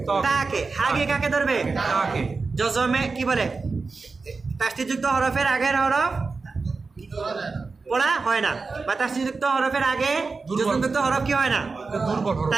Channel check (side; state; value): left; quieter; 4.2 dB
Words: তাকে হাগে কাকে ধরবে জজমে কি বলে তাসদীদযুক্ত হরফের আগের হরফ পড়া হয় না বা তাসদীদযুক্ত হরফের আগে জজমযুক্ত হরফ কি হয় না